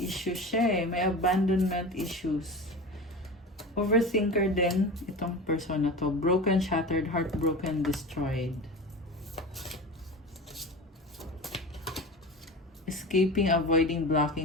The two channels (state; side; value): normal; both; correlation 0.30